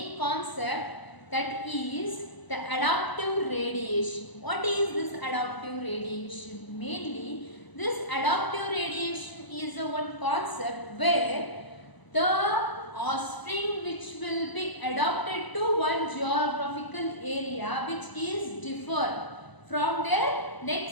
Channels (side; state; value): right; late; 1.0 ms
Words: concept, that is the adaptive radiation. What is this adaptive radiation? Mainly this adaptive radiation is a one concept where the offspring which will be adapted to one geographical area which is different from their